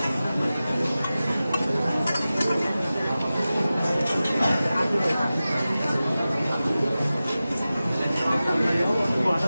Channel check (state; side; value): inverted; both; correlation -0.95